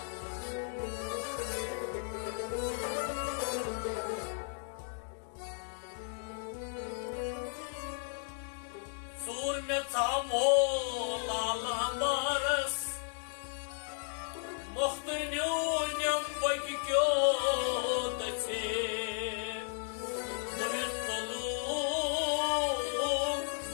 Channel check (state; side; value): silent; right; 55 dB below the other